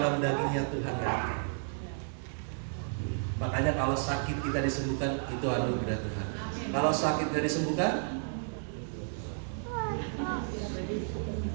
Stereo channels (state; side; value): silent; left; digital silence